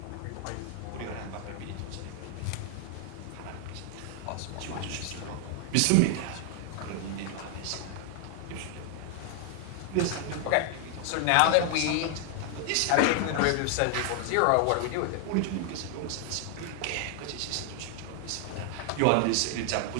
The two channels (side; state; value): both; different; correlation 0.00